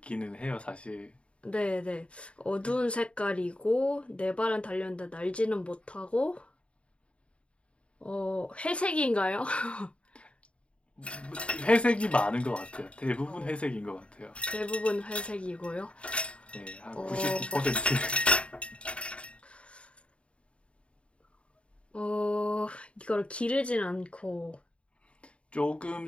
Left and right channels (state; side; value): late; right; 0.060 ms